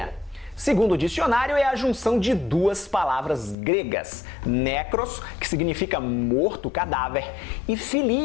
Segundo o dicionário, é a junção de duas palavras gregas, necros, que significa morto, cadáver, e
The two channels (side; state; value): right; drops out; at 3.6 s